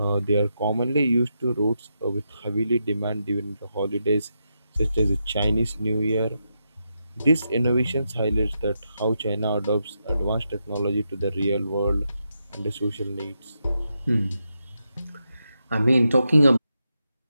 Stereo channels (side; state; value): both; inverted; correlation -0.85